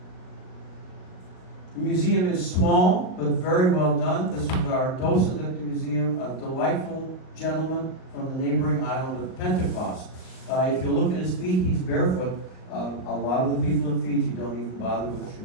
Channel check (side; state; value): right; late; 38 ms